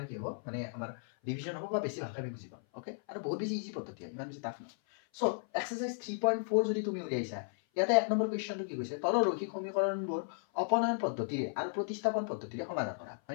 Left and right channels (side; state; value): right; silent; 54 dB below the other